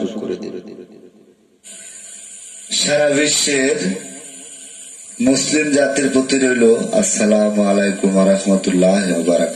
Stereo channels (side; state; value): both; identical; correlation 1.00